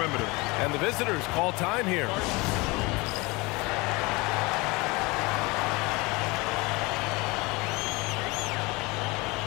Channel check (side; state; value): right; quieter; 24.7 dB